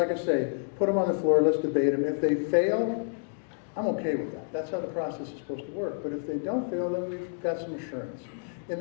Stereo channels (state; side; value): silent; right; digital silence